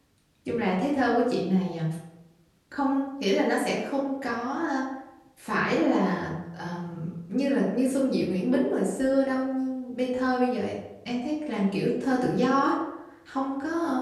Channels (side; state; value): both; identical; correlation 1.00